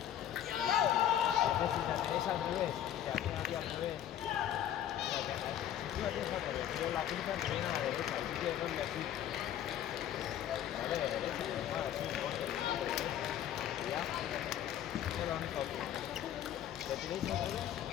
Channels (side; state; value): right; quieter; 10.8 dB